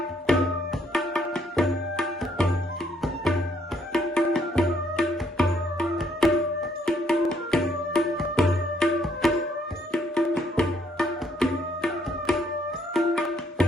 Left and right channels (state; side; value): normal; both; correlation 0.69